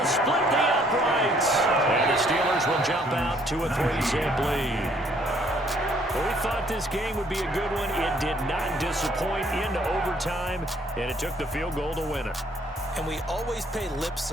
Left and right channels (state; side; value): normal; both; correlation 0.64